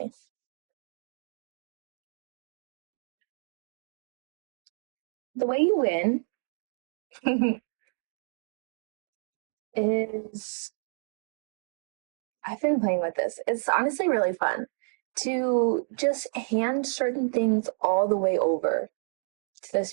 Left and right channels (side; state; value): left; silent; digital silence